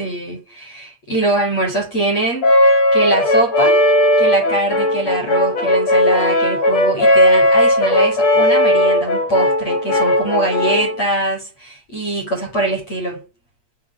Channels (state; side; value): late; right; 8.5 ms